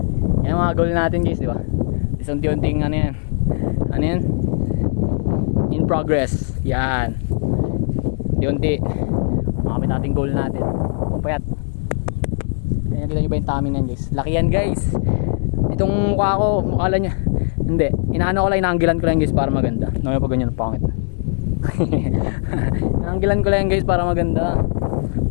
Yan mga goal natin guys, di ba? Unti-unting ano yan? Ano yan? In progress. Yan. Unti-unti. Makamit natin goal natin. Pupayat. Kaya kita nyo ba yung tummy na yan guys? Laki yan guys. Itong mukha ko, mukha niya. Hindi. Inaano ko lang, inaanggilan ko lang guys para maganda. Naman pag ganyan, pangit. Inaanggilan ko lang guys para maganda.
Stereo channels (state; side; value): silent; right; digital silence